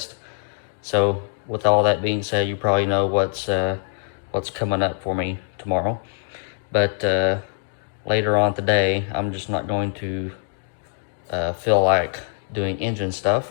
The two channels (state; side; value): silent; right; digital silence